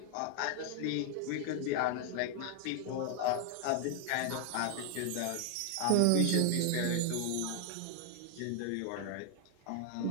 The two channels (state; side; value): different; both; correlation 0.00